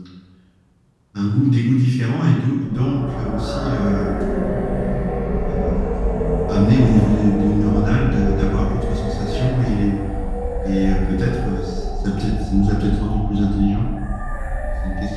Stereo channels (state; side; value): identical; both; correlation 1.00